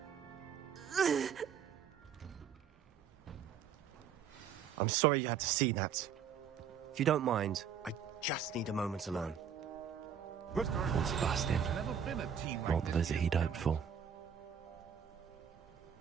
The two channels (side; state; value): left; quieter; 7.4 dB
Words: I'm sorry you had to see that. If you don't mind, I just need a moment alone. Poor Sebastian. Not the visit he'd hoped for.